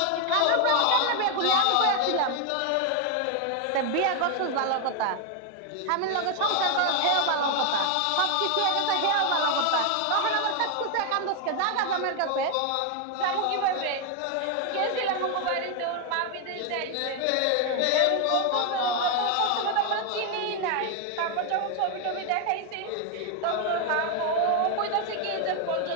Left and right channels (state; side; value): different; both; correlation 0.00